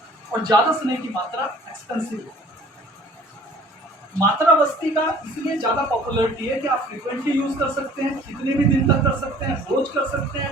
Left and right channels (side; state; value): both; normal; correlation 0.51